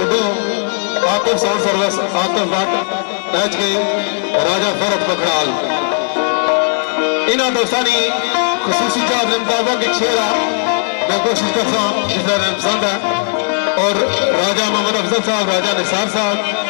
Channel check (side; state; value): right; silent; 68 dB below the other